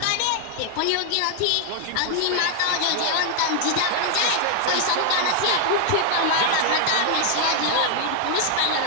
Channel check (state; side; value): different; both; correlation 0.00